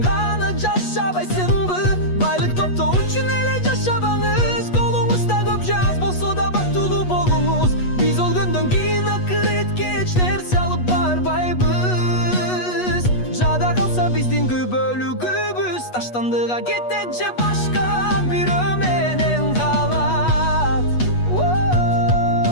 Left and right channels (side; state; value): right; late; 8.2 ms